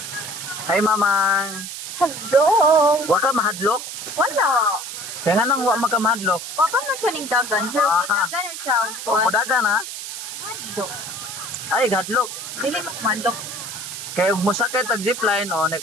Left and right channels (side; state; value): right; noise; hiss, 8 dB below the sound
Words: Hi mamang. Hello. Wa ka mahadlok? Wala. Kaya nga nang wa maka mahadlok. Papa man siya ning dagan. Pero Ah. dagan siya. O dagan ha? Mandok. Ay hadlok. Dili mo mandok. Kaya ug mosakay tag zipline o na